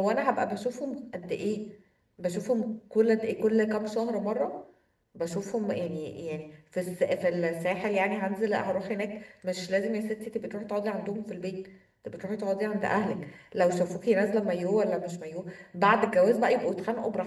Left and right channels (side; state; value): both; identical; correlation 1.00